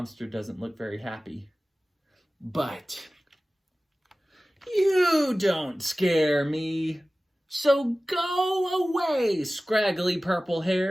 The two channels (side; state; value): both; normal; correlation 0.97